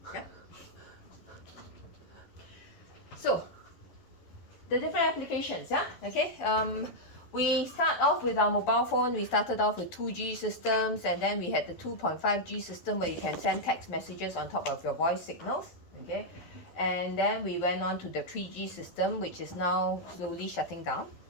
yeah. So the different applications, yeah, okay. We start off with our mobile phone. We started off with 2G systems, and then we had the 2.5G system where you can send text messages on top of your voice signals, okay. And then we went on to the 3G system, which is now slowly shutting down,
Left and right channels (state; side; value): late; right; 12 ms